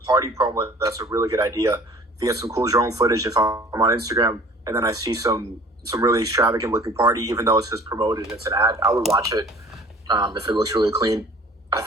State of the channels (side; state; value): both; normal; correlation 0.49